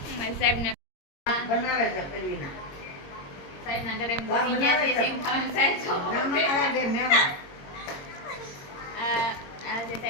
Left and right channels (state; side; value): late; right; 22 ms